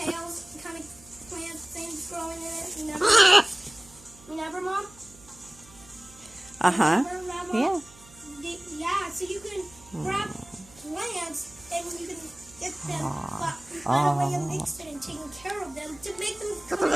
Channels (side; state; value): right; noise; hum, 23 dB below the sound